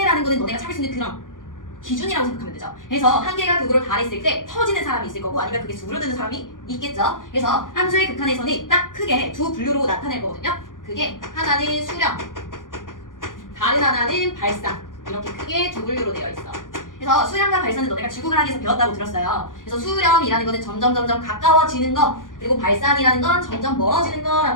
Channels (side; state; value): right; late; 0.89 ms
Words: 거는 너네가 찾을 수 있는 그런 기준이라고 생각하면 되죠. 그래서 한계가 극으로 달했을 때 터지는 사람이 있을 거고 아니면 그게 수그러드는 사람이 있겠죠. 그래서 함수의 극한에서는 딱 크게 두 분류로 나타낼 거거든요. 그게 하나는 수렴, 다른 하나는 발산. 이렇게 크게 두 분류로 되어 있어. 그래서 수렴과 발산은 너네가 지구과학에서 배웠다고 들었어요. 그래서 수렴이라는 거는 점점 가까워지는 거, 그리고 발산이라는 건 점점 멀어지는